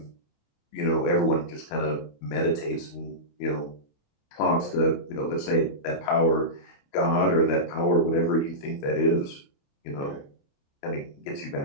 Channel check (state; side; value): late; right; 28 ms